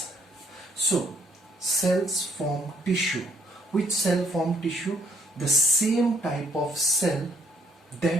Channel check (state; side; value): normal; both; correlation 0.66